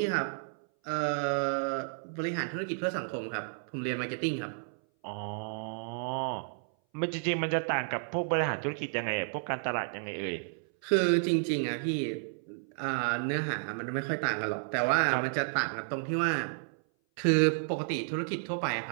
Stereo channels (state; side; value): silent; left; 57 dB below the other